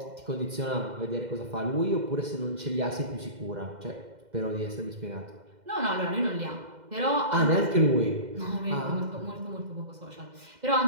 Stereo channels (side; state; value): left; late; 2.1 ms